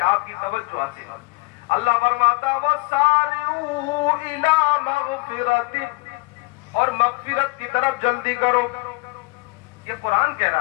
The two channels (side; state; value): right; quieter; 25.8 dB